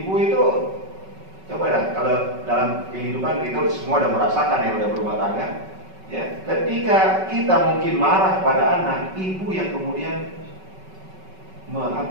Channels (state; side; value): late; left; 5.3 ms